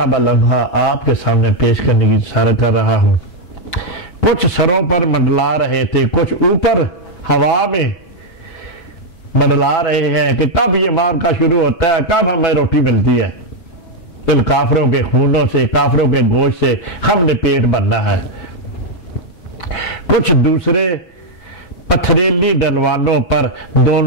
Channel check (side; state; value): right; late; 6.1 ms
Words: بلمحہ آپ کے سامنے پیش کرنے کی اشارہ کر رہا ہوں۔ کچھ سروں پر منڈلا رہے تھے، کچھ اوپر ہوا میں منڈلا رہے ہیں کہ کب یہ مار کا شروع ہوتا ہے، کب ہمیں روٹی ملتی ہے، ان کافروں کے خونوں سے، کافروں کے گوشت سے ہم نے پیٹ بھرنا ہے۔ کچھ دوسرے پتھریلی ڈلوانوں پر